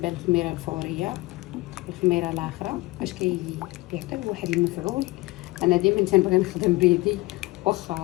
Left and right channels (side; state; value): right; quieter; 21.3 dB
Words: للخميره الفوريه والخميره الاخرى باش كيعطيو واحد المفعول. انا ديما تنبغي نخدم بيدي،